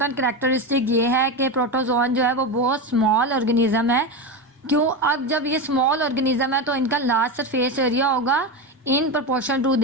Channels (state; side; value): normal; both; correlation 0.16